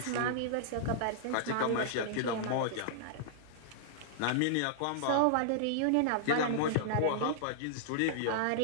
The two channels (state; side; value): different; both; correlation -0.01